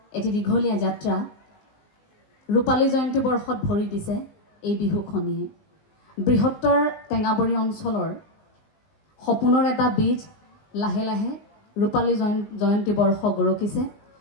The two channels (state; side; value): late; right; 19 ms